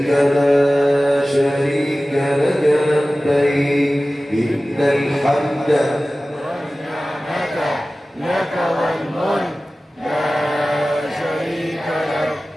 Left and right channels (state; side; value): normal; both; correlation 0.96